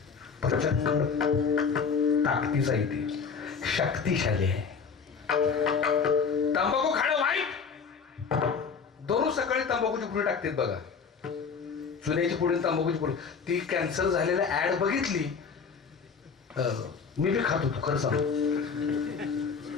प्रचंड ताकदीचा इथे, शक्तिशाली आहे. तंबाखू खाणं वाईट. दररोज सकाळी तंबाखूची पुडी टाकतात बघा, चुन्याची पुडी, तंबाखूची पुडी. ती कॅन्सर झालेल्या ऍड बघितली, मी बी खात होतो खरं सांग.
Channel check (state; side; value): quieter; right; 5.8 dB